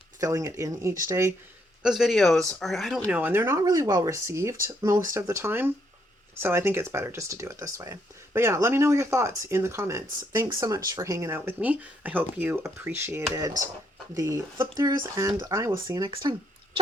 filling it in each day, those videos are, I don't know, and they're not really well received most of the time. So I think it's better just to do it this way. But yeah, let me know your thoughts in the comments. Thanks so much for hanging out with me. I hope you appreciated the flip throughs, and I will see you next time.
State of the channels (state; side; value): normal; both; correlation 0.73